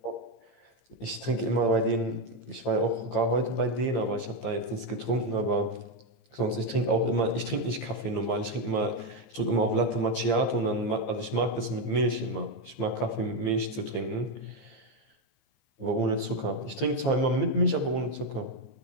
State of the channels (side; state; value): right; late; 15 ms